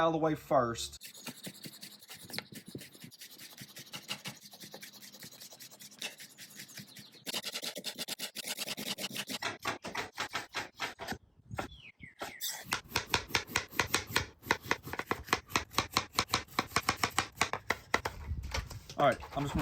of the way first. All right, I'm just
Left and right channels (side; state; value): both; identical; correlation 1.00